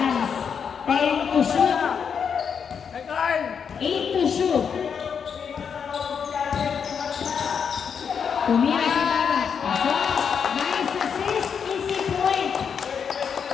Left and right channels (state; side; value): quieter; right; 6.9 dB